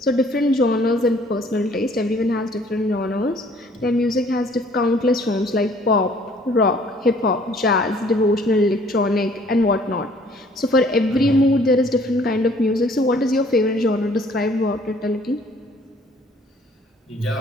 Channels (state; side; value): normal; both; correlation 0.58